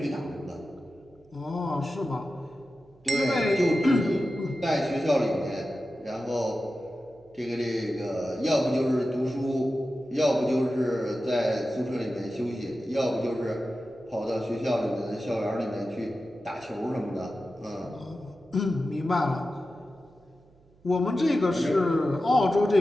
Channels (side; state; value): right; noise; hum, 30 dB below the sound